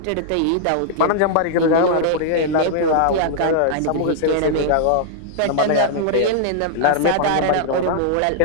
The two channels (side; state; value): both; different; correlation -0.01